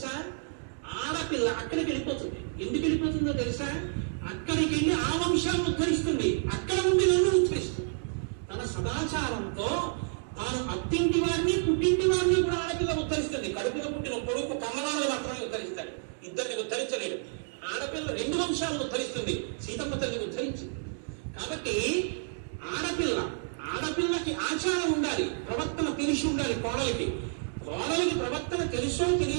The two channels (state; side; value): silent; left; digital silence